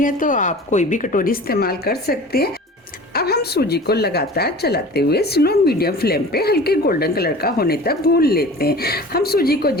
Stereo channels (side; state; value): both; normal; correlation 0.40